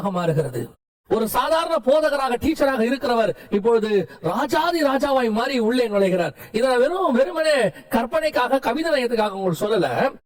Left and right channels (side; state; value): both; identical; correlation 1.00